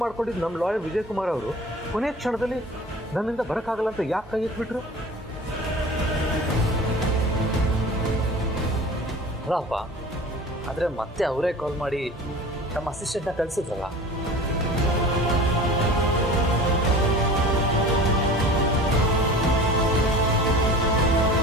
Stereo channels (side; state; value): both; normal; correlation 0.39